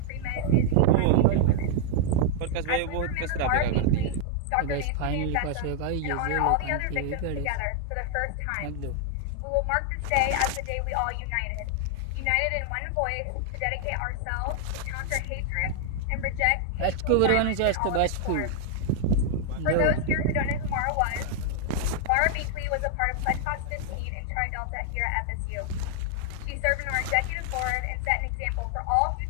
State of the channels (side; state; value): both; different; correlation 0.00